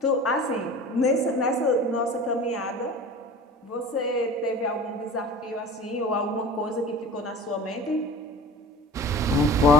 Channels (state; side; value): normal; both; correlation 0.39